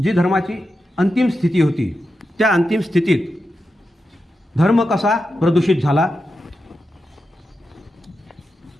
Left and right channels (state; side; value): normal; both; correlation 0.89